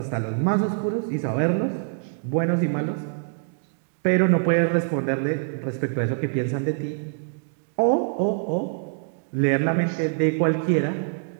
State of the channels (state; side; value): silent; left; digital silence